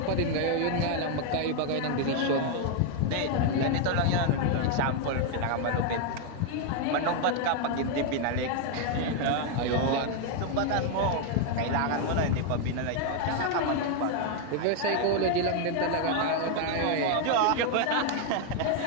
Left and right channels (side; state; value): both; different; correlation 0.01